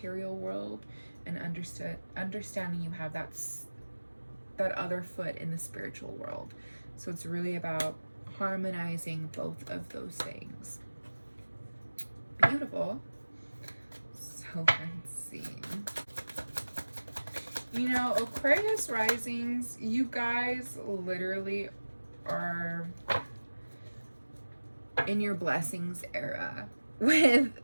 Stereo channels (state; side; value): inverted; both; correlation -1.00